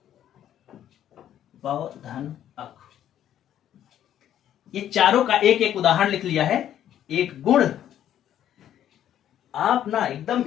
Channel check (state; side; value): quieter; right; 10.9 dB